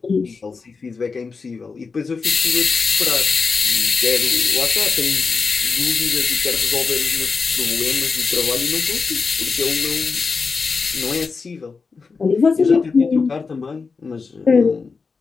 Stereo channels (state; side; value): quieter; right; 4.7 dB